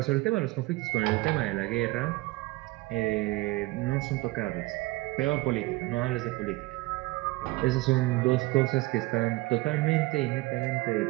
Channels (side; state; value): left; quieter; 20.9 dB